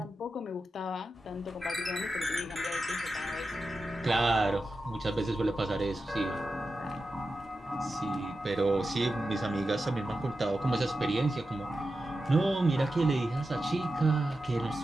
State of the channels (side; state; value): both; normal; correlation 0.91